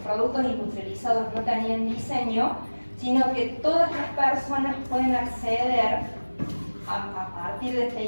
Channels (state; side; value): inverted; both; correlation -1.00